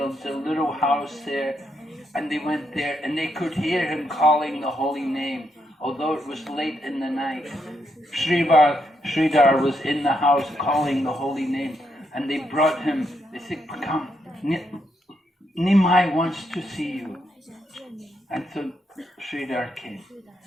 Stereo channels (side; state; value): both; normal; correlation 0.79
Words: a little house there." And they went there, and they could hear him calling the holy name. Although it was late in the night, Shridhar was in the house calling the holy name. And they brought him, they said, "Come, Nimai wants to see you." And so Shridhar came.